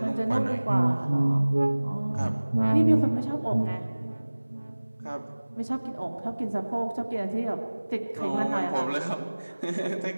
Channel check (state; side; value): inverted; both; correlation -1.00